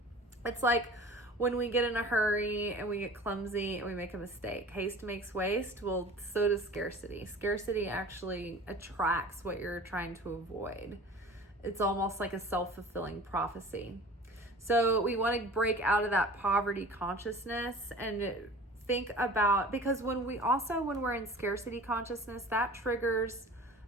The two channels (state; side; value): normal; both; correlation 0.42